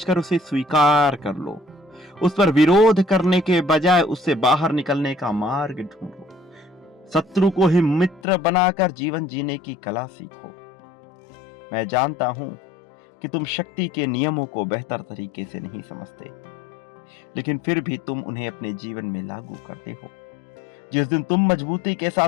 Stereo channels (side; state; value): right; drops out; at 8.2 s